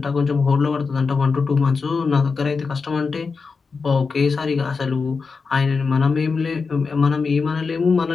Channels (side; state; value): right; quieter; 4.8 dB